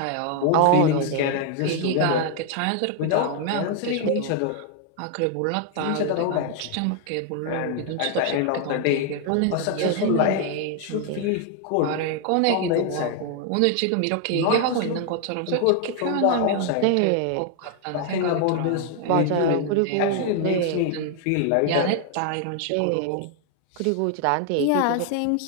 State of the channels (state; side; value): different; both; correlation 0.00